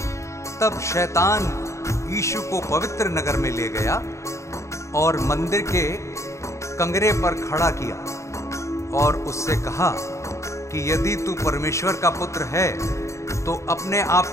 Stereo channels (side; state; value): right; late; 0.14 ms